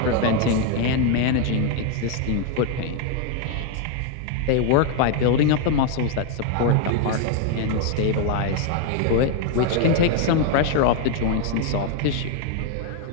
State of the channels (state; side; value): different; both; correlation 0.01